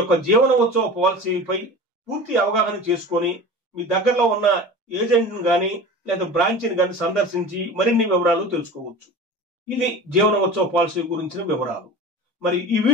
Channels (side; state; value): both; normal; correlation 0.35